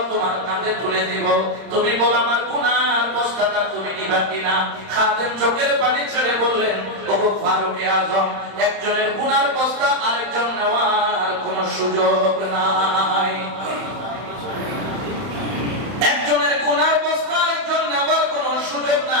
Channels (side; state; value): left; late; 31 ms